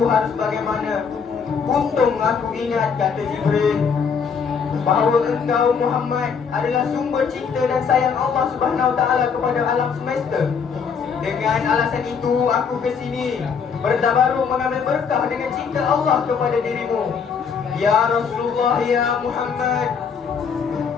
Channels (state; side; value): quieter; right; 6.2 dB